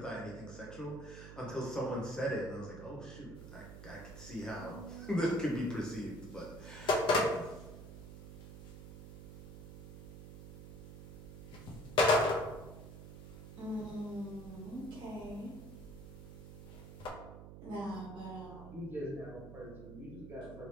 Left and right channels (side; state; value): right; noise; hum, 12 dB below the sound